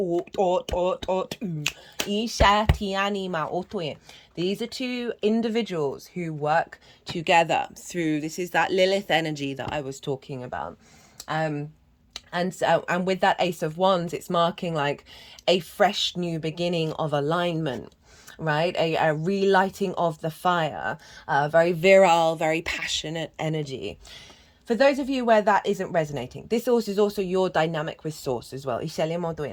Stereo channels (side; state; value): both; identical; correlation 1.00